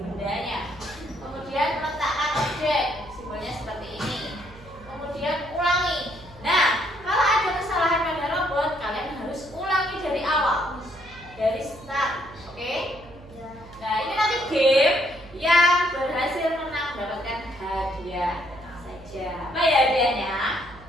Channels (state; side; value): noise; right; hum, 21 dB below the sound